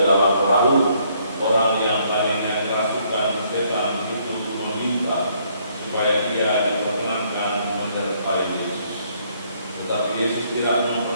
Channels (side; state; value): both; inverted; correlation -0.68